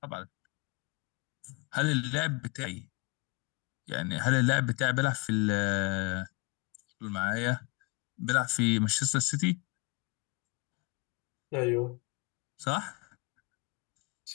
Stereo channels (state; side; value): quieter; right; 28.1 dB